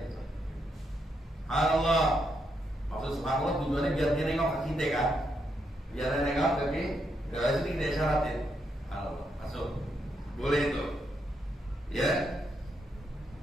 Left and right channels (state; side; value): normal; both; correlation 0.80